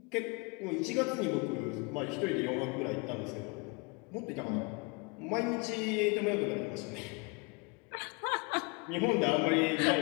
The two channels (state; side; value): quieter; right; 29.9 dB